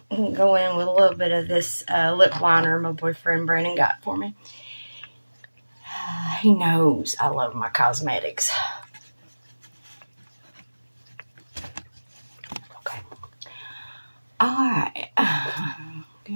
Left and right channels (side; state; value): both; inverted; correlation -1.00